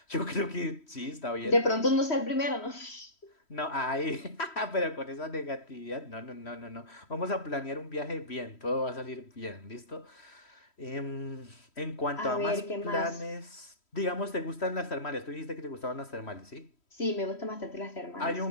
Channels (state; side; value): late; right; 3.1 ms